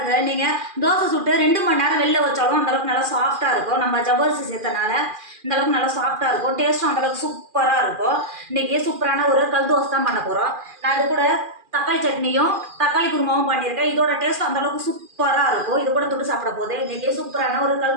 நீங்கள் தோசை சுட்டு 2 மணி நேரம் வெளில வச்சாலும் அந்தளவுக்கு நல்லா சாஃப்டாக இருக்கும். நம்ம ஜவ்வரிசி சேர்த்தனால இந்தளவுக்கு நல்லா சாஃப்டாக இருக்கும். டேஸ்ட்டும் அந்தளவுக்கு சூப்பராக இருக்கும். இன்றைக்கி சூப்பரான ஒரு கல் தோசை தான் பண்ண போகிறோம். நான் இது கூட தக்காளி சட்னியும் தக்காளி குருமாவும் பண்ணியிருக்கேன். இதோட டேஸ்ட் அந்தளவுக்கு சூப்பராக இருக்கும். இது கூட தொட்டு சாப்பிட போது இன்றைக்கி சூப்பரான ஒரு கல்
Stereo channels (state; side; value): late; left; 2.4 ms